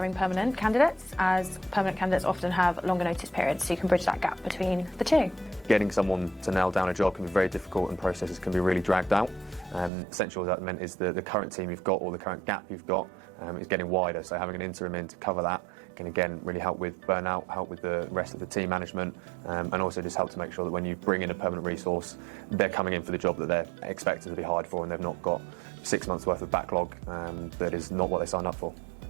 permanent candidates, as permanent candidates often have longer notice periods, so you can bridge that gap between the two. Getting someone to nail down a job can be very difficult and processes can be really dragged out. Essential as that meant is the current team you've got or the current gap you've got is getting wider, so having an interim in to cover that can again really help with burnout, help with the rest of the team management, and also just help to make sure that when you bring in a permanent resource, they're coming in for the job that they're expected to be hired for and they've not got 6 months worth of backlog that is not what they signed up for.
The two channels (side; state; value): left; drops out; at 9.9 s